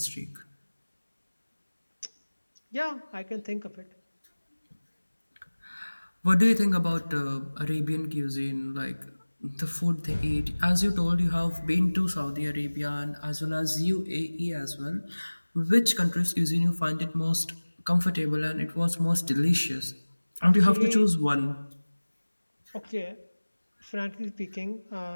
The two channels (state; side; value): inverted; both; correlation -1.00